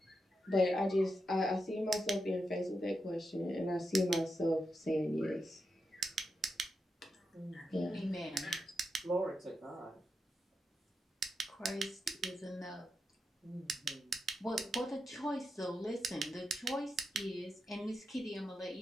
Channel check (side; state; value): both; normal; correlation 0.86